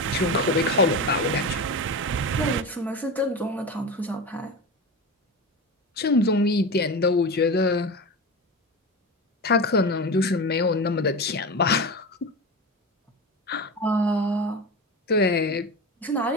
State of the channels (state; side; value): normal; both; correlation 0.24